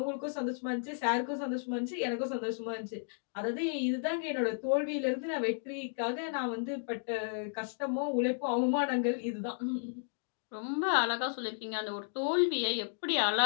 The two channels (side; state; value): right; silent; digital silence